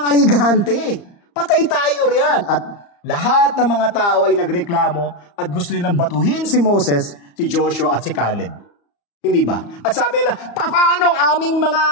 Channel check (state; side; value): late; right; 34 ms